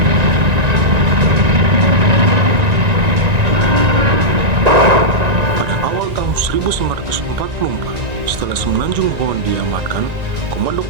Pada awal tahun 1944, setelah Semenanjung Hollandia diamankan, Komando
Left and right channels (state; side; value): late; left; 1.9 ms